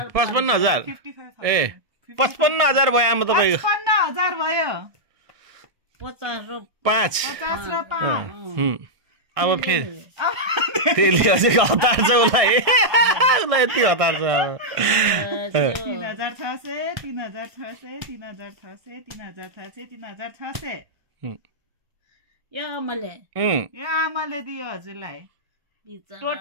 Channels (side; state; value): left; late; 1.6 ms